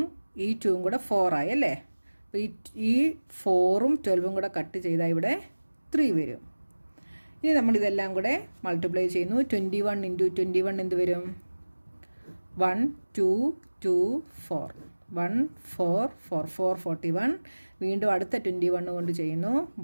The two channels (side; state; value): both; inverted; correlation -1.00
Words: ഈ 2ഉം കൂടെ 4 ആയി അല്ലേ? അപ്പോൾ ഈ 4ഉം 12ഉം കൂടെ കട്ട് ചെയ്താൽ ഇവിടെ 3 വരും. ഇനി നമ്മളിതെല്ലാം കൂടെ മൾട്ടിപ്ലൈ ചെയ്യുന്നു. 21 ഇൻറ്റു 21 എന്ത് വരും? 1 2 2 4 1 4 4 4 41. വീണ്ടും അടുത്ത 21 കൊണ്ട് ചെയ്യുന്നു.